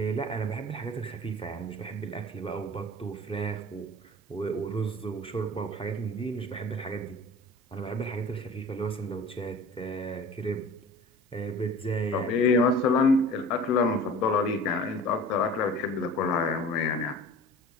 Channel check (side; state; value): both; normal; correlation 0.42